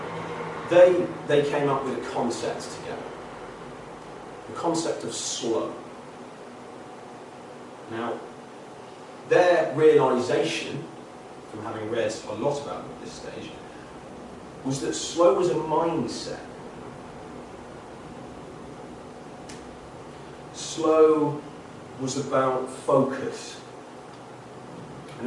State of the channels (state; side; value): identical; both; correlation 1.00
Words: they came up with a concept together. The concept of slow. Now, their realization, from having read a lot about it at this stage, was that slow was a mindset. Slow was about focus.